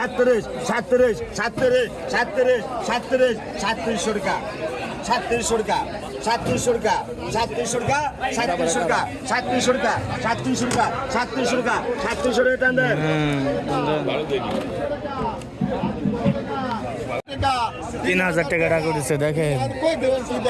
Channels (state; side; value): identical; both; correlation 1.00